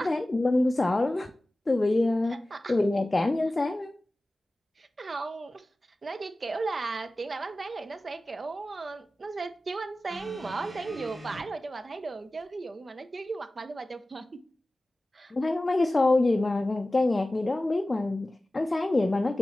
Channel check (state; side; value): normal; both; correlation 0.96